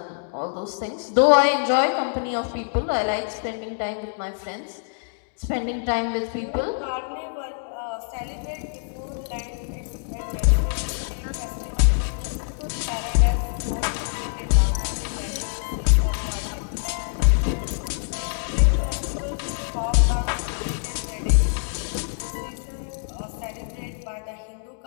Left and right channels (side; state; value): right; silent; digital silence